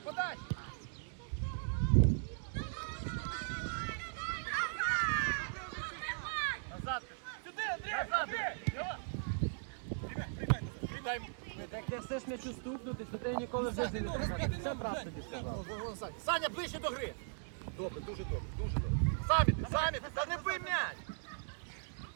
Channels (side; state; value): left; silent; digital silence